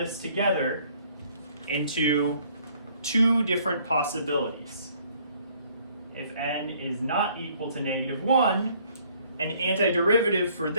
together into two different possibilities. If n is not equal to -1, an antiderivative for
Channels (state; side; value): inverted; both; correlation -0.61